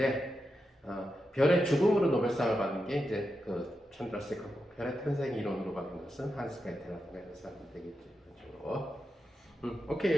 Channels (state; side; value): normal; both; correlation 0.88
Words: 별의 죽음으로 노벨상을 받은 게 이제 그 찬더세커고 별의 탄생 이론으로 받은 것은 한스 베텔라고 하는 사람이 되겠죠. 그렇죠. 오케이